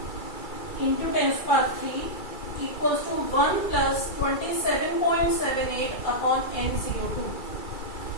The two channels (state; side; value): late; right; 2.3 ms